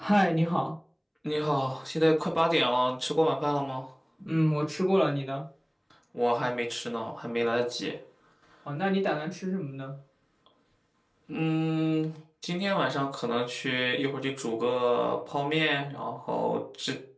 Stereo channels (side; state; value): both; identical; correlation 1.00